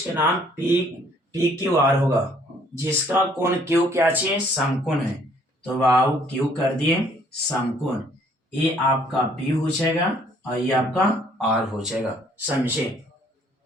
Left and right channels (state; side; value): normal; both; correlation 0.62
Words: के नाम PQR होगा, जिसका कोण Q क्या चाहिए समकोण है, तो बाबू Q कर दिए समकोण। ये आपका P हो जाएगा और ये आपका R हो जाएगा, समझे